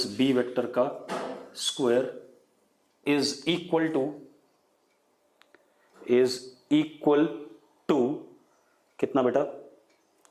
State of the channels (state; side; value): identical; both; correlation 1.00